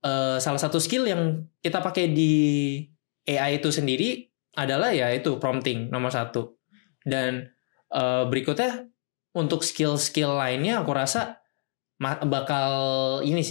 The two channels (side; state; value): right; silent; digital silence